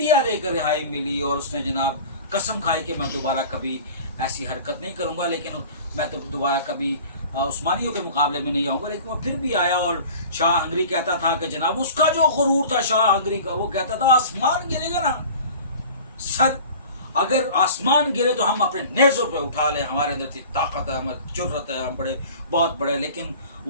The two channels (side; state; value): both; inverted; correlation -0.41